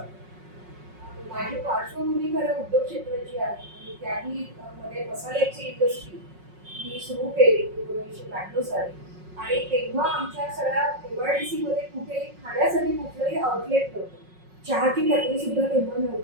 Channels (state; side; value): late; left; 5.5 ms